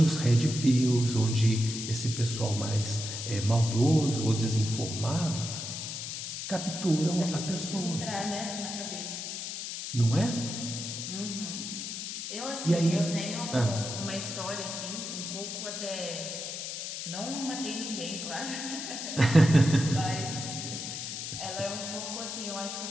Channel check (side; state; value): left; noise; hiss, 6 dB below the sound